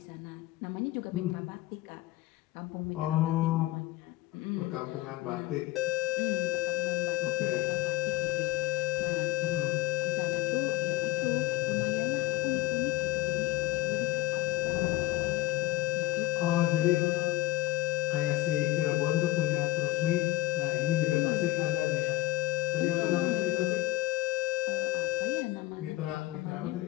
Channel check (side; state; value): right; quieter; 16.1 dB